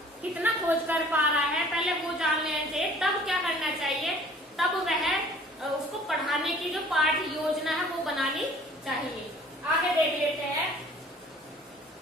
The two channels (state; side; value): normal; both; correlation 0.51